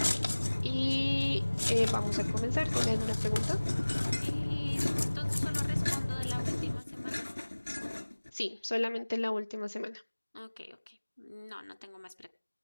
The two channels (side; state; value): both; inverted; correlation -1.00